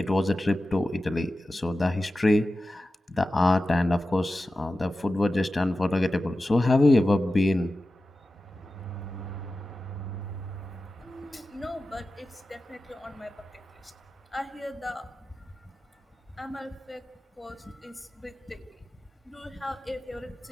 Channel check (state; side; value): normal; both; correlation 0.94